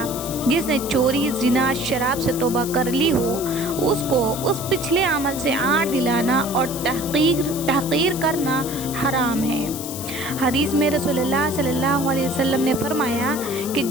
जिसने चोरी ज़िना शराब से तौबा कर ली हो, उसको उस पिछले अमल से आड़ दिलाना और तहक़ीर करना हराम है। हदीस में रसूलुल्लाह सल्लल्लाहु अलैहि वसल्लम ने फरमाया कि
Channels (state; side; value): noise; left; hiss, 9 dB below the sound